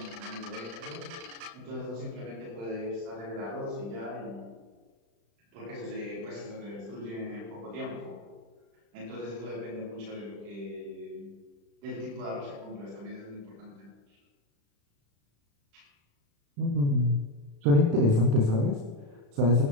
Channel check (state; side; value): late; left; 35 ms